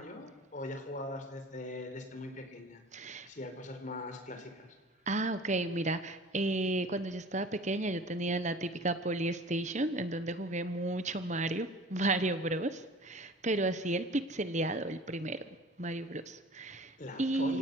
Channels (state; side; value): normal; both; correlation 0.43